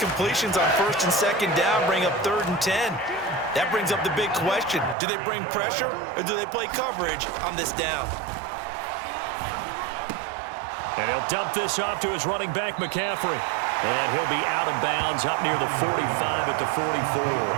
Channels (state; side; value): drops out; left; at 5.0 s